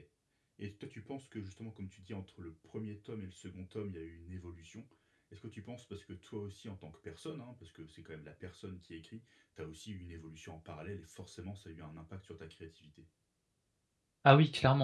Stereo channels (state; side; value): identical; both; correlation 1.00